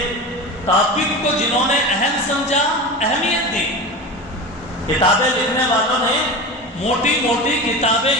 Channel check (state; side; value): normal; both; correlation 0.27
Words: ٹاپک کو جنہوں نے اہم سمجھا، اہمیت دی، کتابیں لکھنے والوں نے موٹی موٹی کتابیں،